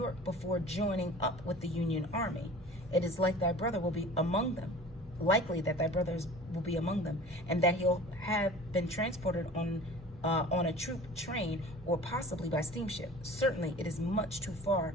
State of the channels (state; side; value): normal; both; correlation 0.42